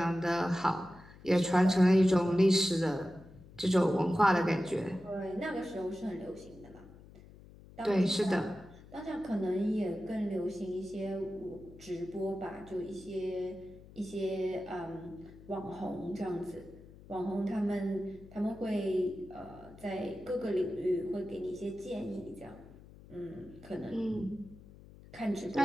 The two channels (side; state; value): left; noise; hum, 20 dB below the sound